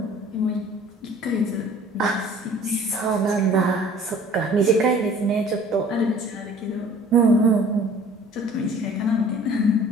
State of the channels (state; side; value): normal; both; correlation 0.50